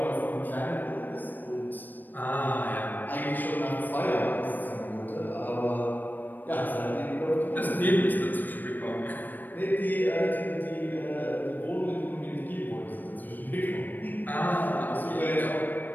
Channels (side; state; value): right; late; 0.089 ms